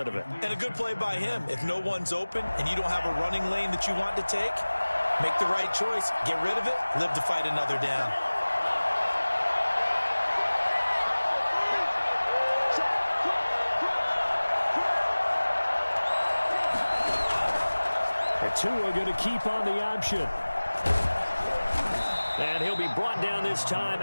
of it. And a good play by him. If no one's open and you don't have a running lane that you want to take, make the right choice. Get rid of it. Live to fight another down. The two are going to keep on the option. And he'll be brought down this time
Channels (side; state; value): both; inverted; correlation -1.00